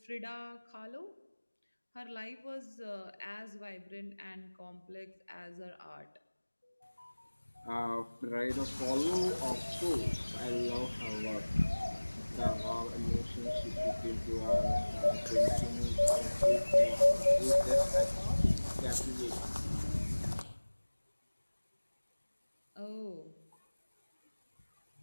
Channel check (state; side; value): inverted; both; correlation -1.00